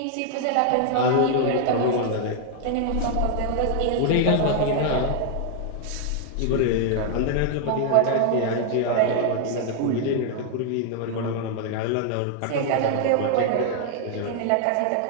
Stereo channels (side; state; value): both; different; correlation 0.00